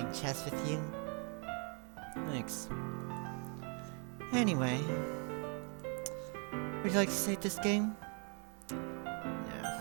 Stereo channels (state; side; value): quieter; left; 38.3 dB